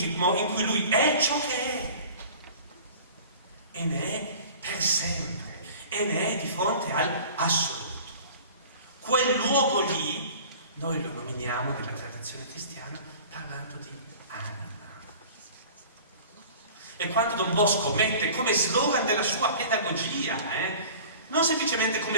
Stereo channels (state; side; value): inverted; both; correlation -0.43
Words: in cui lui è ciò che è e ne è per sempre e ne è di fronte all'assoluto. Quel luogo lì noi lo nominiamo nella tradizione cristiana parlando di anima. E quando Don Bosco mette come slogan della sua pedagogia, non semplicemente